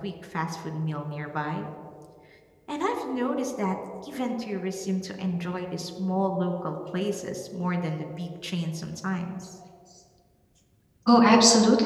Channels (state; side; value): identical; both; correlation 1.00